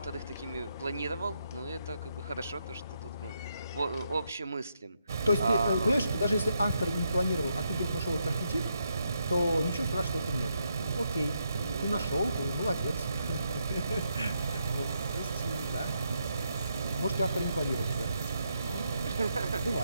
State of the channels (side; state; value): both; inverted; correlation -0.80